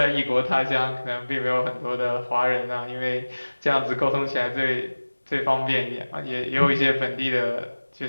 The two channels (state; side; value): inverted; both; correlation -1.00